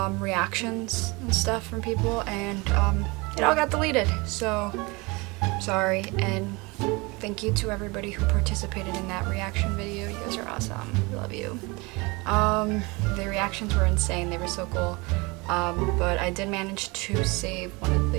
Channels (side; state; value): left; quieter; 26.0 dB